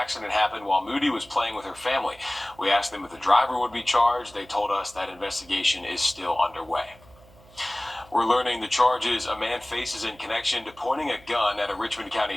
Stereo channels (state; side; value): noise; right; hum, 25 dB below the sound